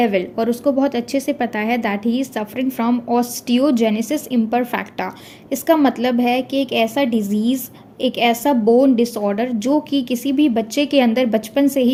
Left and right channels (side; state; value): both; identical; correlation 1.00